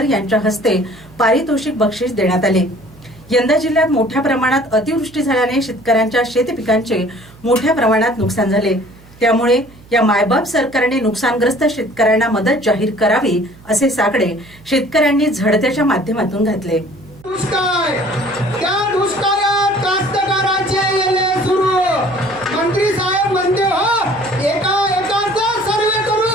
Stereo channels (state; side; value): noise; right; hum, 24 dB below the sound